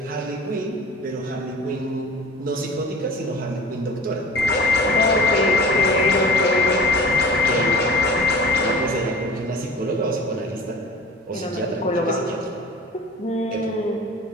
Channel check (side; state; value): both; normal; correlation 0.41